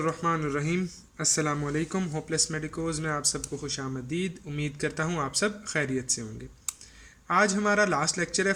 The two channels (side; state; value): both; identical; correlation 1.00